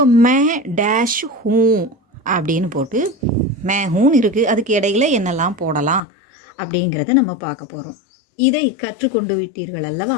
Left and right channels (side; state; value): right; drops out; at 6.0 s